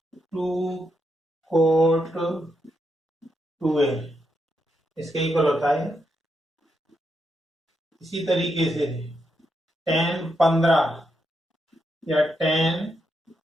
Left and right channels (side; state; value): both; normal; correlation 0.82